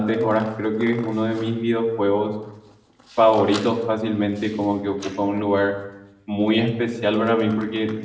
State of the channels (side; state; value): both; identical; correlation 1.00